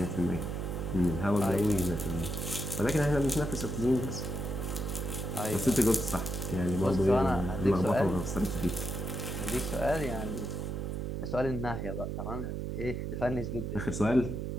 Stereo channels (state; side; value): noise; right; hum, 3 dB below the sound